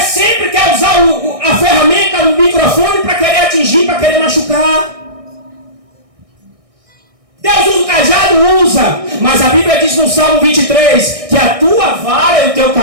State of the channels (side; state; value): left; late; 1.6 ms